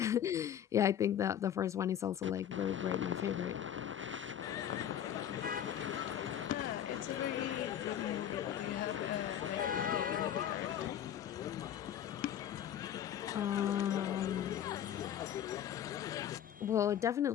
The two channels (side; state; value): right; quieter; 10.1 dB